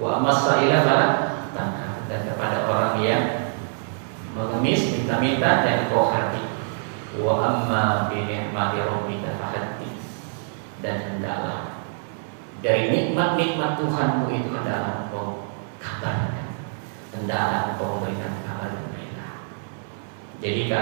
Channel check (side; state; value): left; silent; 56 dB below the other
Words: takhar, dan kepada orang yang mengemis minta-minta jangan kau hati. Wa amma bi ni'mati rabbika fahaddits, dan hendaklah dari nikmat-nikmat Tuhanmu itu hendaklah engkau kabarkan, hendaklah engkau memberikan kabar gembira. Jadi